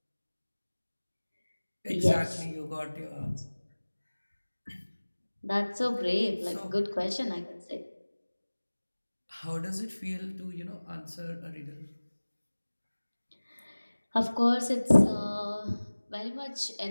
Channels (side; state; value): both; inverted; correlation -1.00